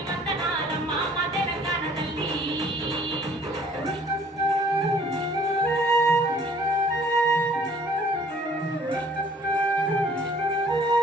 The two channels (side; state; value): both; normal; correlation 0.57